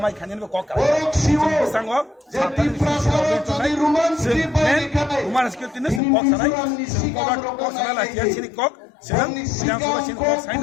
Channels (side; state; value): right; drops out; at 6.0 s